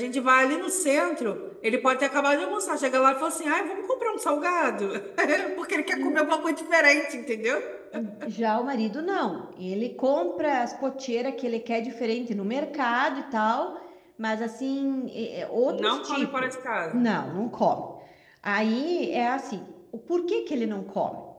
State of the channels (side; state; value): both; identical; correlation 1.00